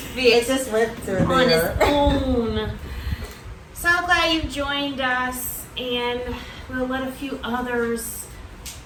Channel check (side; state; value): both; identical; correlation 1.00